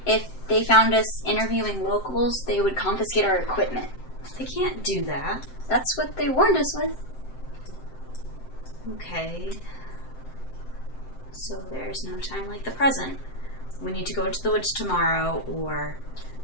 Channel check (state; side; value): late; right; 7.7 ms